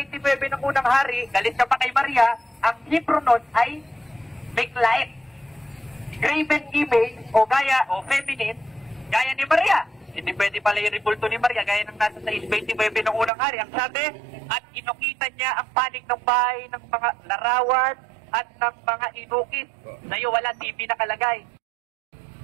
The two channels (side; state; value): left; drops out; at 13.3 s